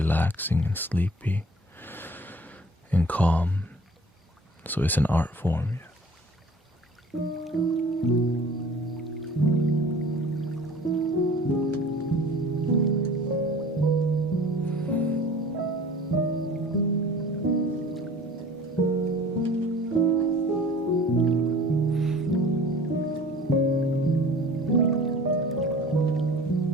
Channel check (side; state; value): both; normal; correlation 0.46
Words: and sleepy and calm. So it's an art form.